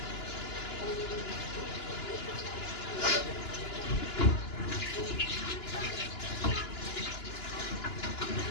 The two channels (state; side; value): late; right; 2.9 ms